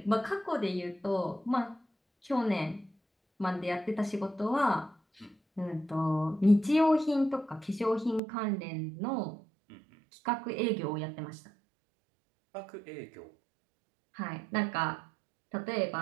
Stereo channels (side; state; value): left; drops out; at 8.2 s